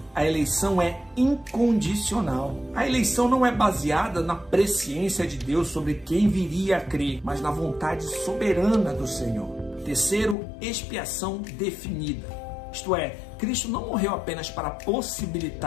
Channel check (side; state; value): right; drops out; at 10.4 s